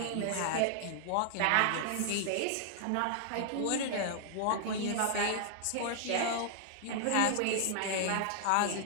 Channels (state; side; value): different; both; correlation -0.01